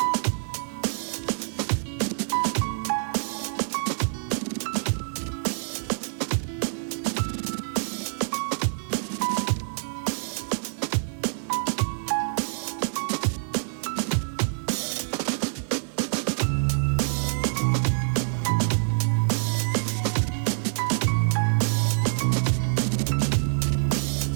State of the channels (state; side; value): silent; left; digital silence